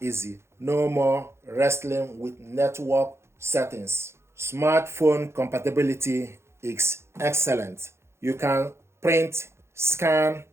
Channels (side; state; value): left; late; 0.13 ms